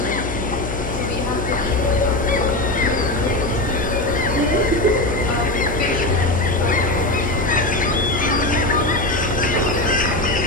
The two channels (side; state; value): left; noise; hum, 7 dB below the sound